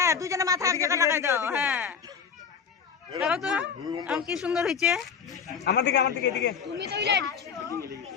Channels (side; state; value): right; quieter; 6.6 dB